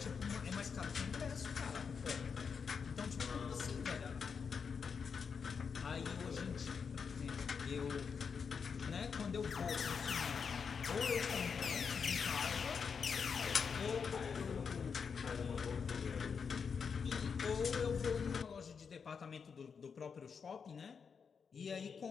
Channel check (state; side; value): quieter; right; 6.1 dB